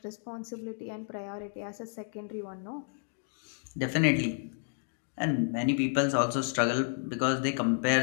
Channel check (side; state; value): right; silent; digital silence